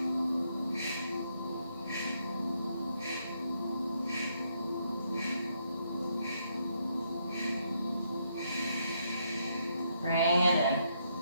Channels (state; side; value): inverted; both; correlation -0.76